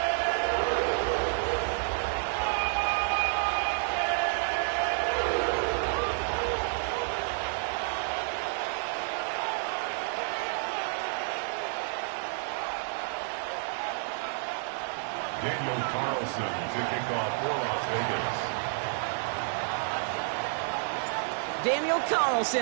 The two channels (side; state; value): left; silent; 58 dB below the other